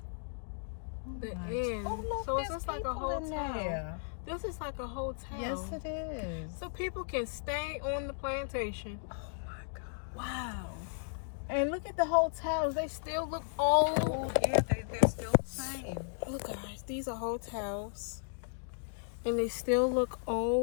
the inn? Oh look, So there's it's just like a people in hotel. there. This is like a hotel. Yes, it is. So people can stay on the plantation. Oh my God. Wow. And look at the hotels. They still look old. Oh yeah, they're still the same. Look guys, these are hotels. And they still look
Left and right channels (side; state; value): right; silent; digital silence